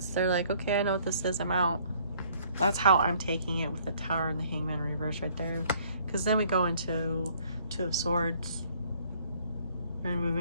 they're like, okay, I know what this is, I'm out. That's how I'm taking it with the Tower and the Hangman reverse right there. Because then we go into Two of Swords and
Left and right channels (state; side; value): inverted; both; correlation -0.61